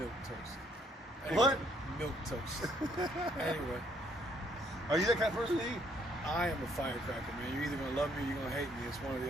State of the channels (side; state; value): both; normal; correlation 0.67